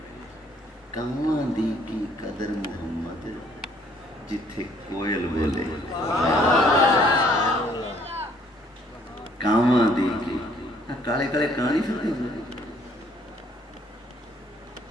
کاواں دی کی قدر محمد جتھے کوئل بولے کاواں دی کی کالے کالے کہانی پھرتے ہیں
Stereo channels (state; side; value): normal; both; correlation 0.62